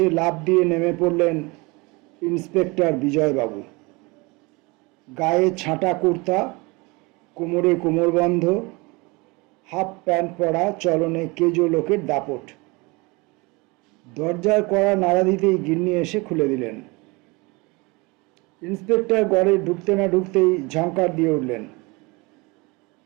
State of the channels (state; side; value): quieter; left; 26.0 dB